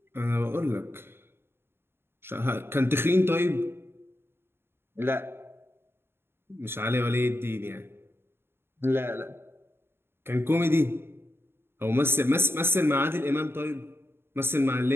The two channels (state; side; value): late; left; 0.11 ms